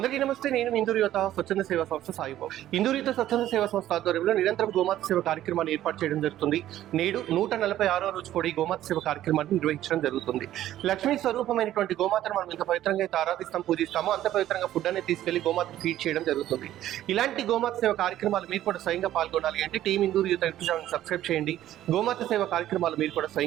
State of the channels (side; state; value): left; quieter; 13.0 dB